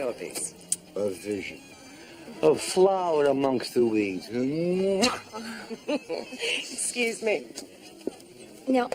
A vision. A flower amongst the weeds. Excuse me. Now,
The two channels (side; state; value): both; identical; correlation 1.00